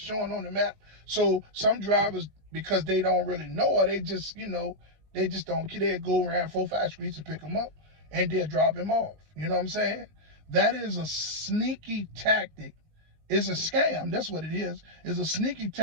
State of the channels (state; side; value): late; left; 19 ms